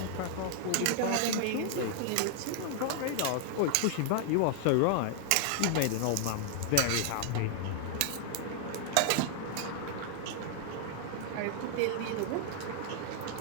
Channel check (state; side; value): different; both; correlation -0.01